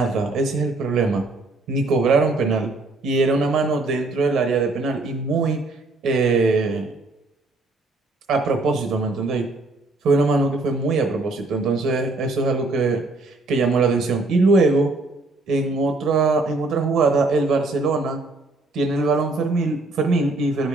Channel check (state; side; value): quieter; left; 3.1 dB